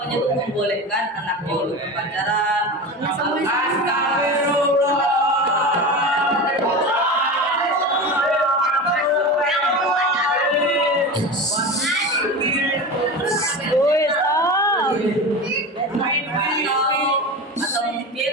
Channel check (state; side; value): normal; both; correlation 0.27